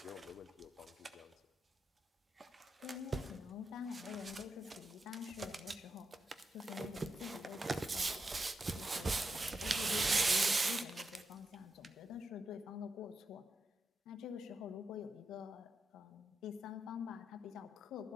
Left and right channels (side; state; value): both; normal; correlation 0.86